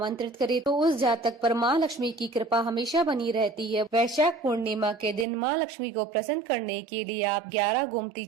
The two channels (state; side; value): drops out; left; at 5.2 s